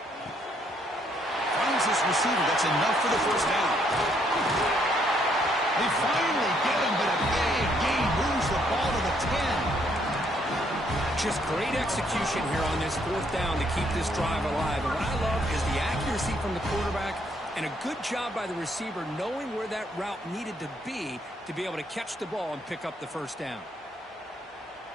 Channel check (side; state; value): both; normal; correlation 0.70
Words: Finds this receiver. That's enough for the first down. They finally get him, but a big gain moves the ball to the 10. Just great execution here on this 4th down to keep this drive alive. And what I love is the accuracy from the quarterback and a good job by the receiver knowing where that route needed to be able to catch the ball and pick up the first down.